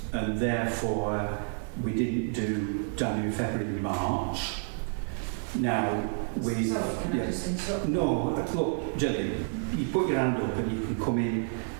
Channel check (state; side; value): silent; left; 58 dB below the other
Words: and therefore we didn't do January, February and March. Now, we... So, can I just interrupt? No, look, Gillian, you put your hand up and you can come in